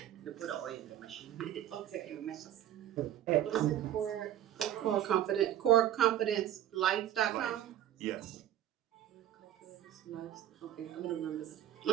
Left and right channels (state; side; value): quieter; left; 11.7 dB